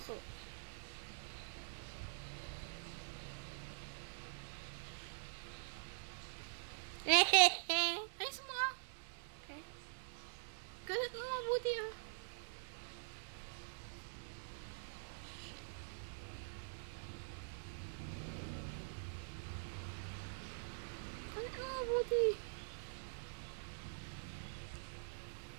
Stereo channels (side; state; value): left; silent; digital silence